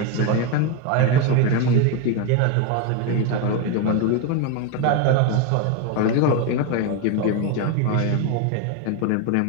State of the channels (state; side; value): different; both; correlation 0.02